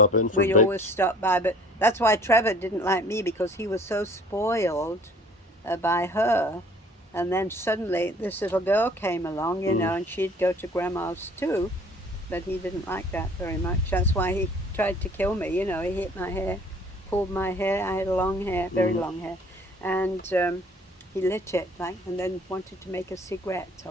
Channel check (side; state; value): both; normal; correlation 0.52